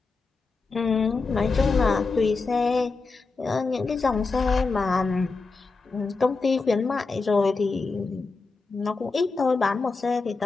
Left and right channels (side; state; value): right; quieter; 4.1 dB